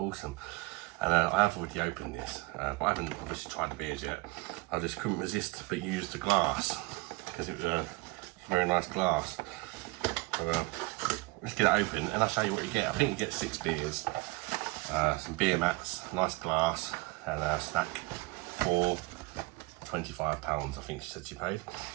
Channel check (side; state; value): left; quieter; 23.6 dB